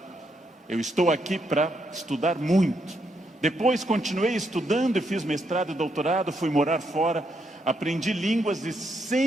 Eu estou aqui para estudar muito. Depois continuei estudando e fiz mestrado e doutorado, fui morar fora, aprendi línguas e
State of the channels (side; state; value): both; normal; correlation 0.77